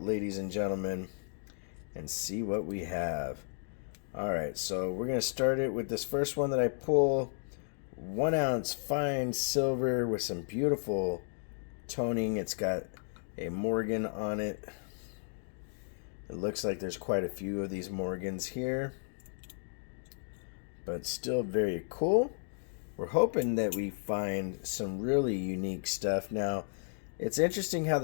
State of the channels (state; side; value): silent; right; digital silence